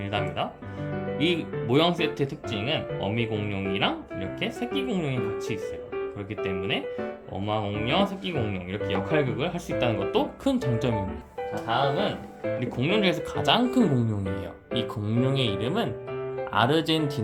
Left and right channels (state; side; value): identical; both; correlation 1.00